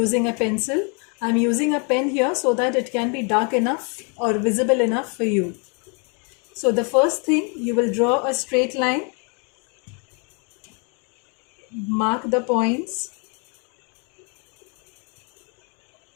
a pencil. I am using a pen here so that it can be dark enough or visible enough for you. So the first thing, you will draw a straight line, mark the points,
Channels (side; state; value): right; quieter; 36.3 dB